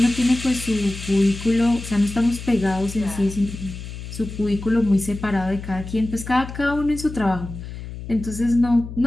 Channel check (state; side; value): noise; left; hum, 10 dB below the sound